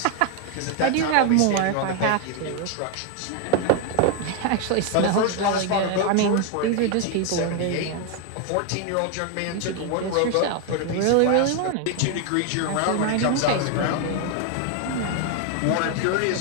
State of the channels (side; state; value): both; different; correlation 0.01